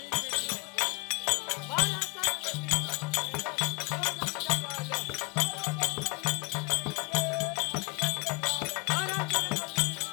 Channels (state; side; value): quieter; right; 27.4 dB